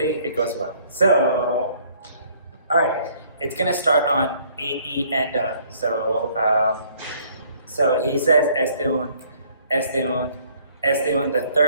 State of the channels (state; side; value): inverted; both; correlation -0.61